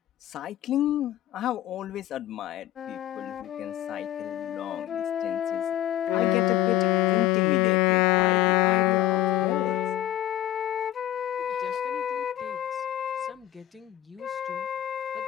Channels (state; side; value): quieter; right; 13.4 dB